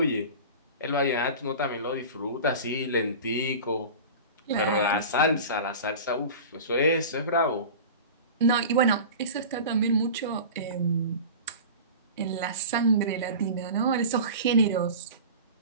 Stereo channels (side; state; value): both; inverted; correlation -0.34